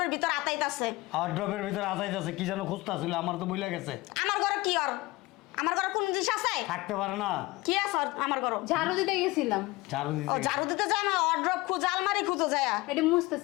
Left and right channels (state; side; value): quieter; right; 21.2 dB